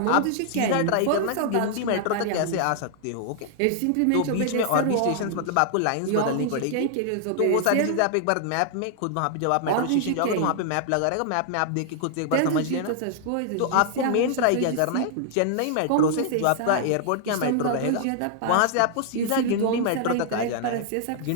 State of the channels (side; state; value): both; different; correlation -0.01